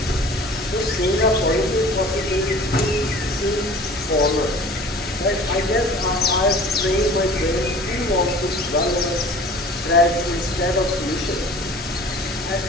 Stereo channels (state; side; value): normal; both; correlation 0.45